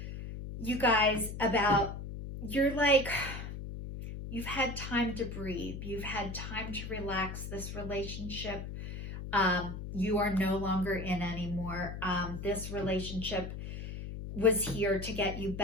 you guys, you've had time to breathe. You've had time to relax. This relationship, you are no longer in anymore. This relationship was here to get you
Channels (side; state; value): left; noise; hum, 7 dB below the sound